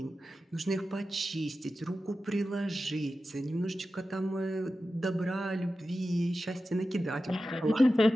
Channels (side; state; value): both; normal; correlation 0.93